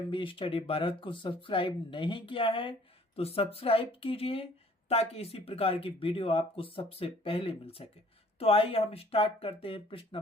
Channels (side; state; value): both; normal; correlation 0.56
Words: स्टडी भारत को सब्सक्राइब नहीं किया है तो सब्सक्राइब कीजिए, ताकि इसी प्रकार की वीडियो आपको सबसे पहले मिल सके। तो आइए हम स्टार्ट करते हैं। प्रश्न